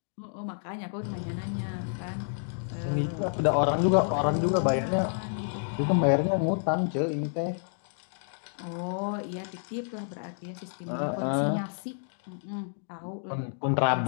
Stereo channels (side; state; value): right; silent; digital silence